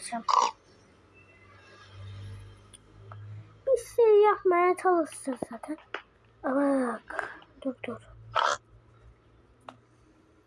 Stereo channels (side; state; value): both; identical; correlation 1.00